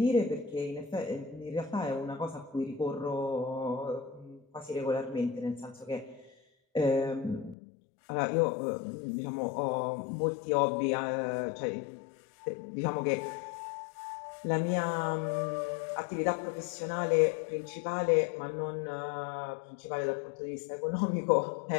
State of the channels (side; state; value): right; drops out; at 7.6 s